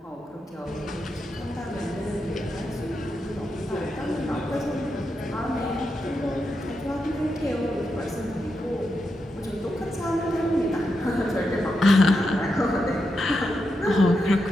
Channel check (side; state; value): both; normal; correlation 0.86